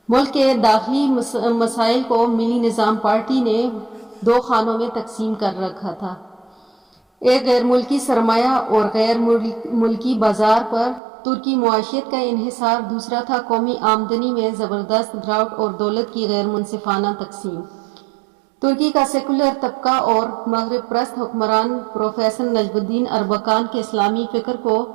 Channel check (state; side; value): drops out; left; at 11.0 s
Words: ملک کے داخلی مسائل کو ملی نظام پارٹی نے 2 خانوں میں تقسیم کر رکھا تھا، ایک غیر ملکی سرمایہ اور غیر ملکی بازار پر ترکی معیشت کا انحصار، دوسرا تھا قومی آمدنی میں زبردست گراوٹ اور دولت کی غیر منصفانہ تقسیم۔ ترکی کا سیکولر طبقہ اور مغرب پرست حکمران پروفیسر نجم الدین اربکان کے اسلامی فکر کو